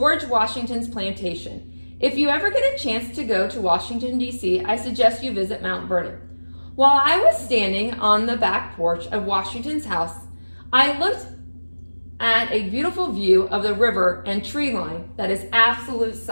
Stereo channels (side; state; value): both; inverted; correlation -1.00